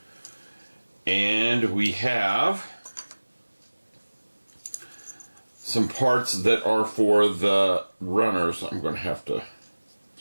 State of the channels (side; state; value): both; inverted; correlation -1.00